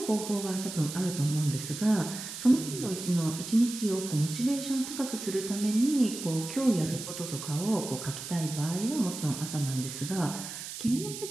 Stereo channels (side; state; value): right; noise; hiss, 9 dB below the sound